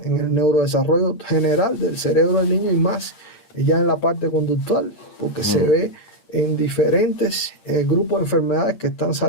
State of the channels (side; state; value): right; late; 8.7 ms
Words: en el neurodesarrollo general del cerebro del niño y más ya en la parte conductual, porque se ve en diferentes grupos de enfermedades que están